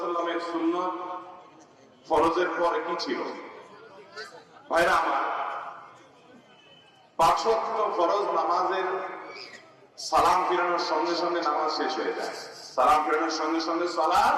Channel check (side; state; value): both; identical; correlation 1.00